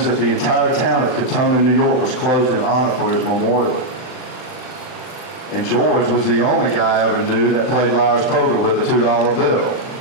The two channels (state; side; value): late; right; 39 ms